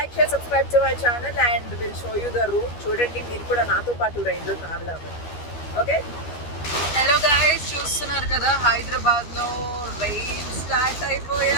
share, subscribe to my channel and we'll show you the route. చూడండి మీరు కూడా నాతో పాటు రైల్లో ట్రావెల్ అవ్వండి. ఓకే, హలో గైస్, చూస్తున్నారు కదా హైదరాబాద్లో రైన్ స్టార్ట్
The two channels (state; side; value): late; right; 13 ms